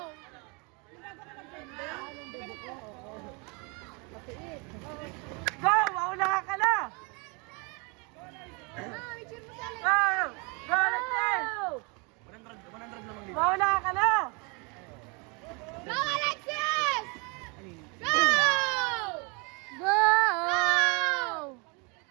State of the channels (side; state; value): left; quieter; 31.3 dB